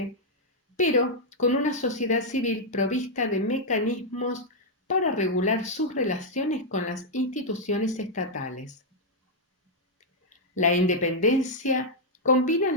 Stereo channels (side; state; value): both; normal; correlation -0.04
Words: pero con una sociedad civil provista de mecanismos para regular sus relaciones con las instituciones estatales. La independencia combina